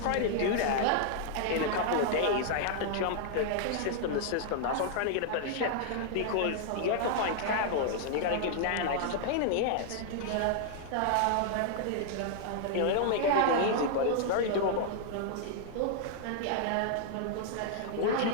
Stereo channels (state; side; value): different; both; correlation -0.01